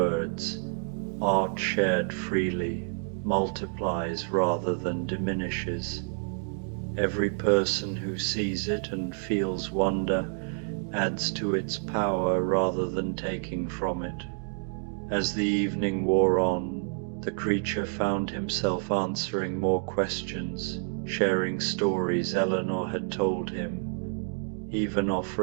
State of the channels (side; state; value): left; silent; 57 dB below the other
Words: "Art shared freely multiplies rather than diminishes. Every person who sees it and feels wonder adds to its power rather than taking from it." As the evening wore on, the creature found himself answering more questions, sharing stories Eleanor had told him, even